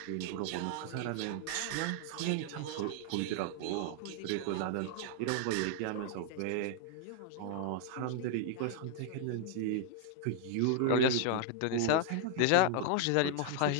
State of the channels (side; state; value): both; different; correlation -0.01